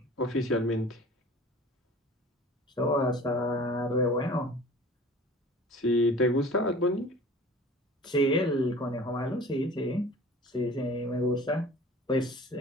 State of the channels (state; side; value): normal; both; correlation 0.44